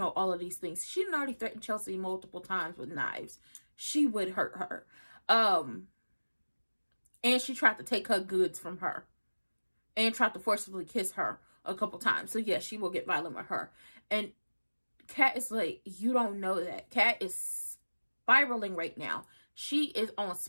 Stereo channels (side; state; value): both; inverted; correlation -1.00